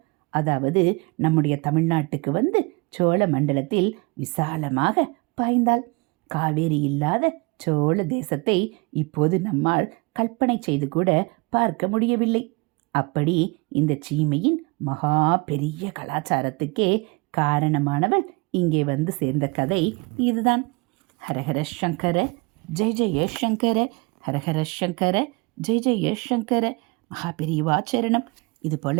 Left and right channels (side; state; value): left; quieter; 27.5 dB